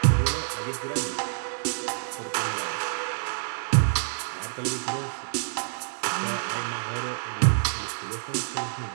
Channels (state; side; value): silent; left; 60 dB below the other